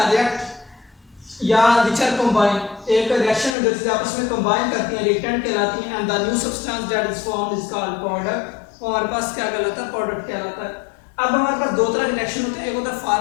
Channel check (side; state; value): right; drops out; at 3.6 s